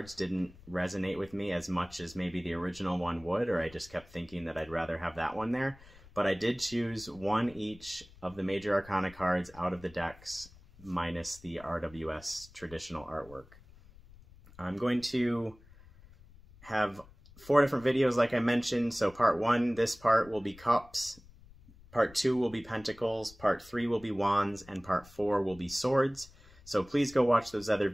didn't resonate with me as much as maybe the original one would, or I just kept thinking that I'd rather have that one there. But I did choose one each of the major arcana cards out of the decks minus the RWS traditional artwork. I'm going to have 4 different videos like I mentioned. So part 1, this part will be cups. Part 2 will be pentacles, part 3 will be wands, and part 4 will be swords. So please go watch those other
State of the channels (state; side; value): noise; left; rumble, 23 dB below the sound